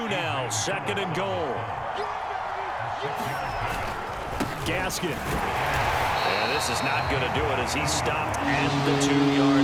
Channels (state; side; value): identical; both; correlation 1.00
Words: now, second and goal. Gaskin. And this is not going to do it as he's stopped at the